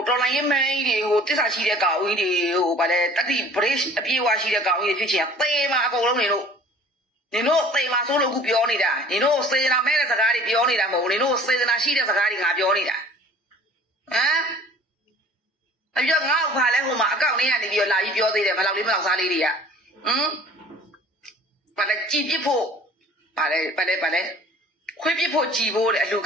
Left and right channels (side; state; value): both; normal; correlation 0.49